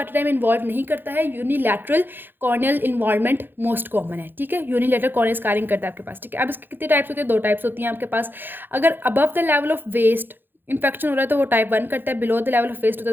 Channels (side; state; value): left; late; 0.097 ms